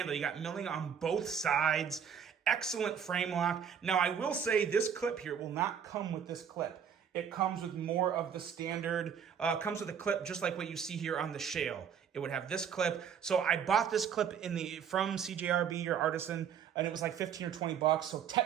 You got milling on both sides. Excellent frame lock. Now, I will say this clip here will not come with this clip. It comes with more of the standard, comes with a clip just like what you see here on the Shale. It would have this clip. So I bought this clip from CJRB or Artisan, and it was like 15 or 20 bucks. So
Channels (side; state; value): left; quieter; 7.8 dB